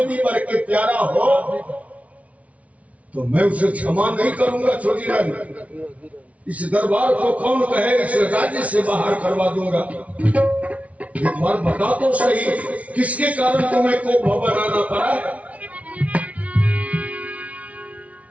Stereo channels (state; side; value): late; left; 0.066 ms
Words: भी बढ़ के प्यारा हो तो मैं उसे क्षमा नहीं करूंगा। छोटी रानी, इस दरबार को कौन कहे इस राज्य से बाहर करवा दूंगा। एक बार बता तो सही, किसके कारण तुम्हें को बनाना पड़ा।